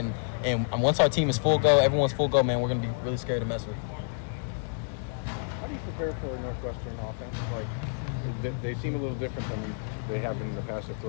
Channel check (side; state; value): right; silent; digital silence